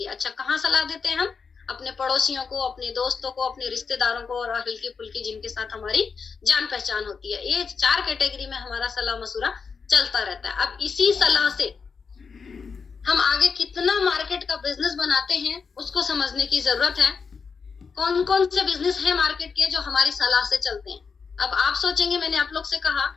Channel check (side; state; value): right; quieter; 5.5 dB